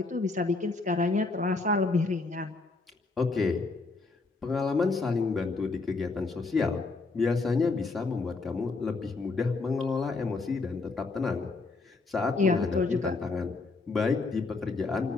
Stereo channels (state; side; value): quieter; right; 3.8 dB